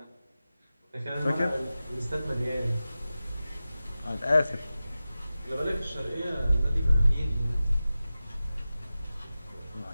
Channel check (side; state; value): both; inverted; correlation -0.95